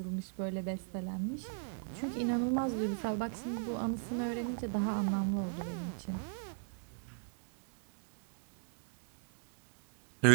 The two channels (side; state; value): left; silent; digital silence